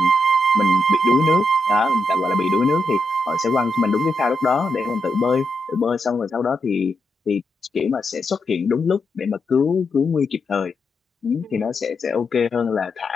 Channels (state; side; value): normal; both; correlation 0.83